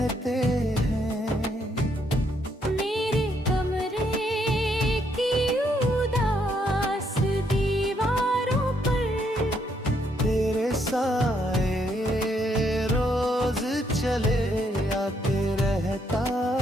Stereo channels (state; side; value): normal; both; correlation 0.73